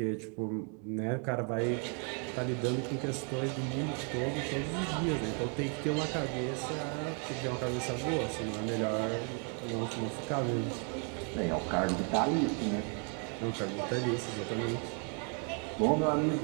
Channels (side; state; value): left; quieter; 39.2 dB